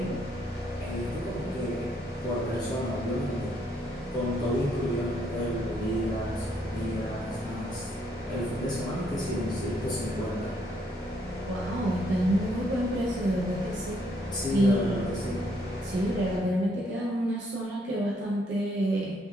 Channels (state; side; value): normal; both; correlation 0.71